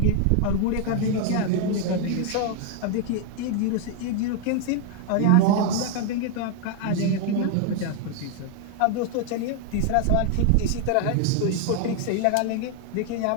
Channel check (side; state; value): both; different; correlation 0.00